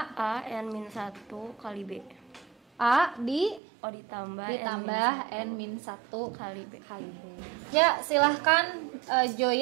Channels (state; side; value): drops out; left; at 3.6 s